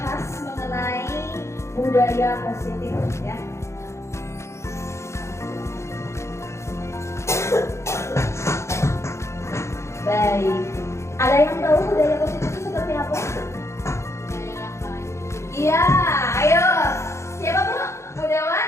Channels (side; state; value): right; late; 0.14 ms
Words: mengenai budaya positif ya. Baik, ada yang tahu budaya positif itu seperti apa? Iya, ayo. Siapa Bu? Budayawan